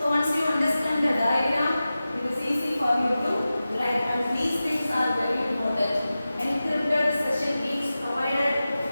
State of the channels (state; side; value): inverted; both; correlation -0.95